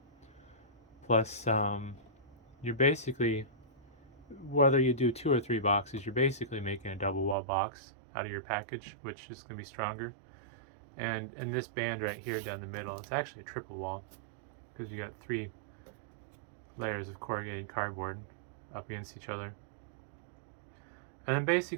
Plus, you're basically, whether you do 2 or 3 boxes, you're basically making a double wall box out of your package, which is going to be stronger. And in this band right here down the middle, it's actually a triple wall, because you got 3 layers of corrugated cardboard up against each other. And then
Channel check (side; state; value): left; drops out; at 7.4 s